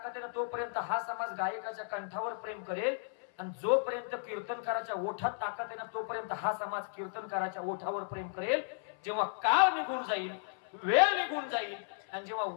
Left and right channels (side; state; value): right; silent; 55 dB below the other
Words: आहे ना तोपर्यंत हा समाज गायकाच्या कंठावर प्रेम करेल. आणि जोपर्यंत कीर्तनकाराच्या ओठात ताकद आहे ना तोपर्यंत हा समाज कीर्तनकाराच्या ओठावर प्रेम करेल. जेव्हा काळ निघून जाईल, वेळ निघून जाईल आणि जेव्हा